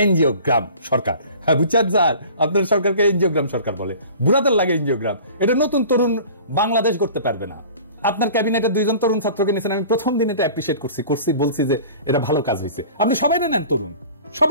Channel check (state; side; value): inverted; both; correlation -0.44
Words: এনজিওগ্রাম সরকার। হ্যাঁ বুঝছেন স্যার, আপনার সরকারকে এনজিওগ্রাম সরকার বলে। বুড়াদের লাগে এনজিওগ্রাম। এটা নতুন তরুণ বাংলাদেশ করতে পারবে না। আপনার ক্যাবিনেটে 2 জন তরুণ ছাত্রকে নিয়েছেন, আমি প্রথম দিন এটা অ্যাপ্রিশিয়েট করছি, বলছি যে এটা ভালো কাজ হয়েছে। আপনি সবাই নেন তরুণ,